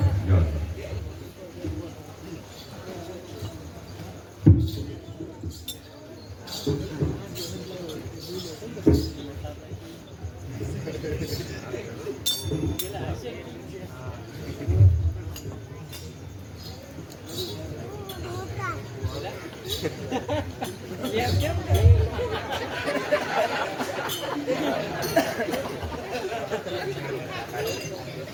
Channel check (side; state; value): both; identical; correlation 1.00